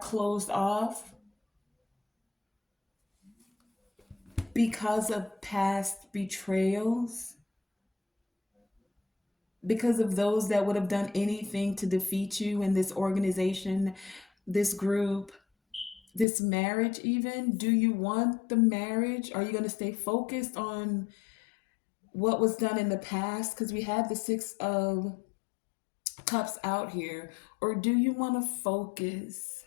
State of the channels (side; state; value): right; drops out; at 16.2 s